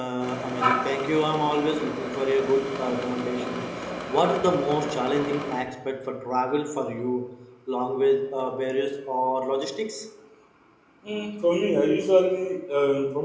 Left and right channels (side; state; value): both; identical; correlation 1.00